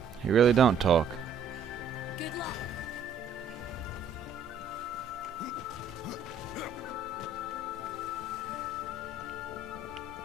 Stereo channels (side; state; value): left; quieter; 4.6 dB